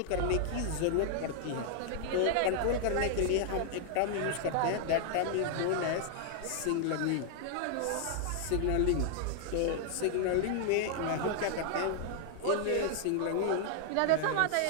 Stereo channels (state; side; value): different; both; correlation 0.00